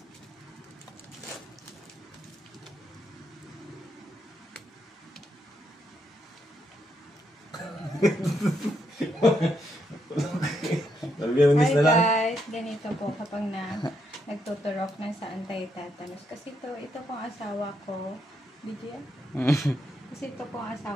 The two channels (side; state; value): both; normal; correlation 0.78